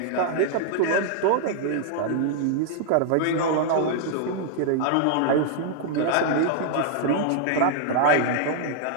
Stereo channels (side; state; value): both; different; correlation -0.01